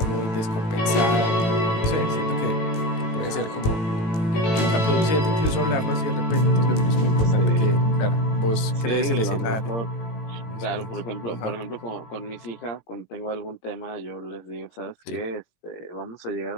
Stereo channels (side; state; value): right; late; 18 ms